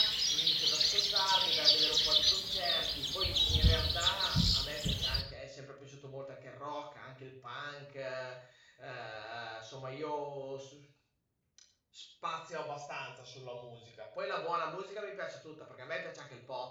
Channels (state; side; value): identical; both; correlation 1.00